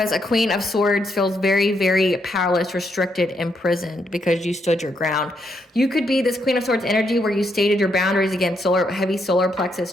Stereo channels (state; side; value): normal; both; correlation 0.77